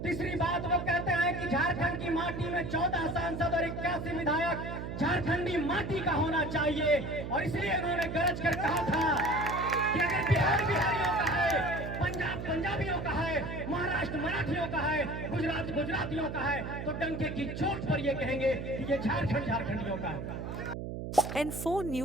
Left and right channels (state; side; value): noise; right; hum, 6 dB below the sound